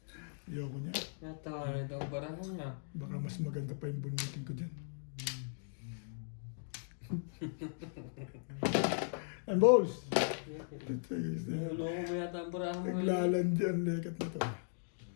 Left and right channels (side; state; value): right; silent; digital silence